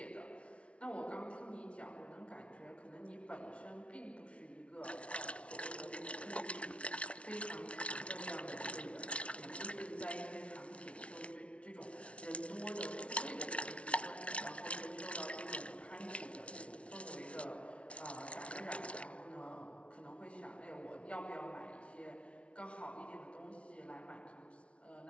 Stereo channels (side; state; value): right; late; 0.061 ms